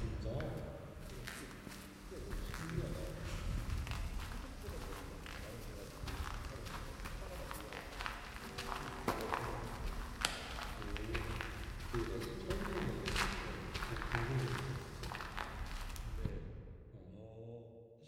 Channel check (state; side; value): identical; both; correlation 1.00